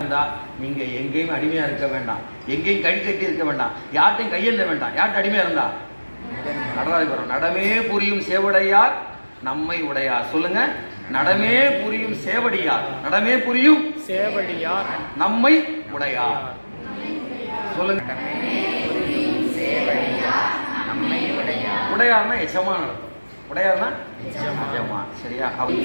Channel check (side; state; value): both; inverted; correlation -1.00